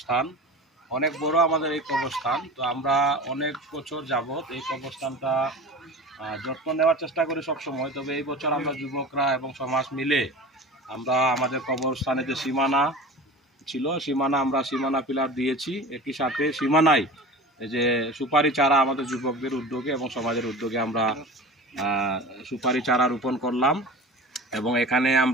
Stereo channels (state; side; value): normal; both; correlation 0.35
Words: অনেক বড়, আমাদের এই কবরস্থান। তো আমরা অনেক বছর যাবত এই কবরস্থানটা যত্ন নেওয়ার চেষ্টা করি সবসময়। তবে এই বছর আমরা যুবকরা এবং সমাজ মিলে আমরা আমাদের কবরস্থানে যে সীমানা ছিল, আমরা সীমানা পিলার দিয়েছি। একই সাথে সীমানায় এই যে সুপারি চারা আমাদের যুবকদের উদ্যোগে এবং সমাজের উদ্যোগে আমরা সুপারি চারা রোপণ করলাম। এবং এখানে